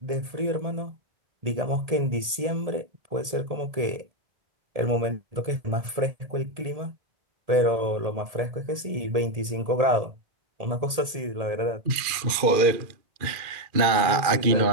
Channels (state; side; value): late; left; 1.8 ms